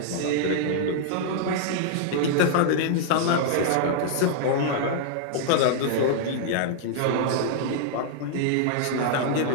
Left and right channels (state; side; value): different; both; correlation -0.01